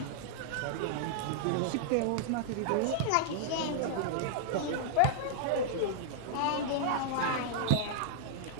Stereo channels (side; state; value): both; different; correlation -0.01